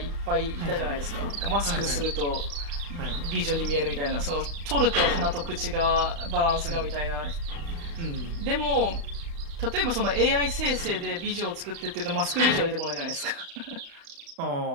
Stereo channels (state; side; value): late; left; 35 ms